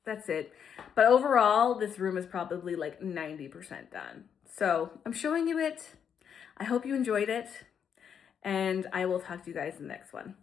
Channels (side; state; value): right; quieter; 7.8 dB